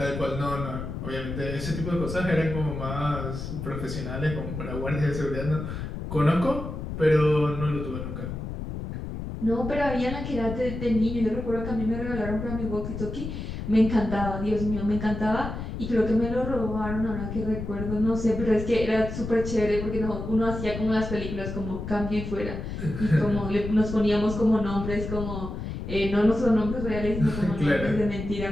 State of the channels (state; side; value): noise; left; rumble, 6 dB below the sound